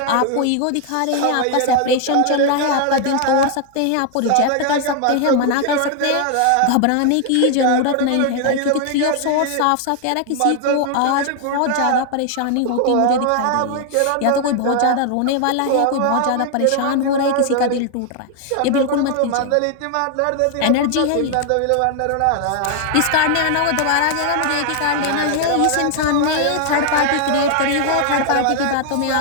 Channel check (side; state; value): both; different; correlation 0.00